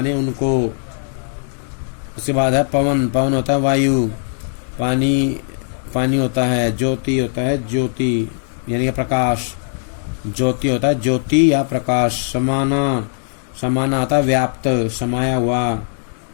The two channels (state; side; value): silent; right; digital silence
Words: उनको। उसके बाद है पवन, पवन होता है वायु, पानी, पानी होता है, ज्योति होता है ज्योति यानी प्रकाश, ज्योति होता है ज्योति या प्रकाश। समाना, समाना आता है व्याप्त, समाया हुआ।